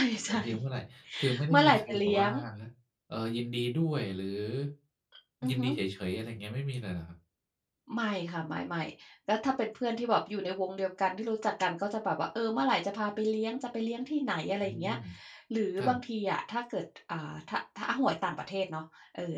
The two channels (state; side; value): identical; both; correlation 1.00